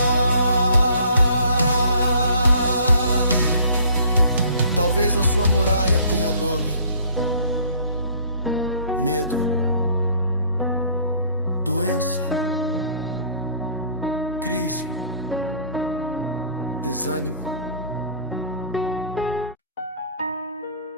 Talvez a sua muralha tenha nome: medo, doença, crise, desânimo.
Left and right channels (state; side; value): inverted; both; correlation -0.55